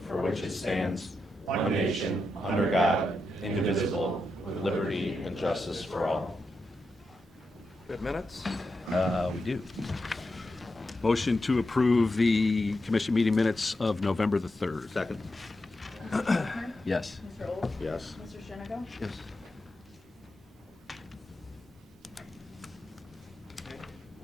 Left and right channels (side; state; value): both; normal; correlation 0.87